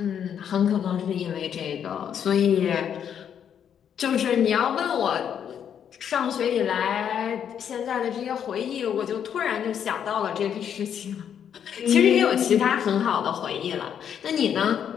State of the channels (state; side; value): quieter; right; 8.6 dB